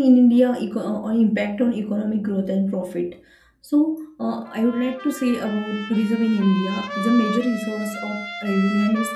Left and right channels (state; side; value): identical; both; correlation 1.00